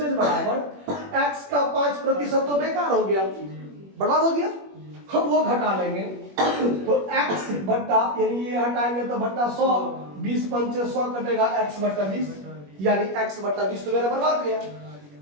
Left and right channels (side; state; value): left; late; 21 ms